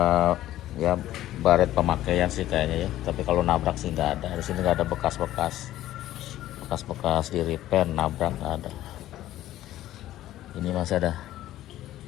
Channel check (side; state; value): right; quieter; 14.0 dB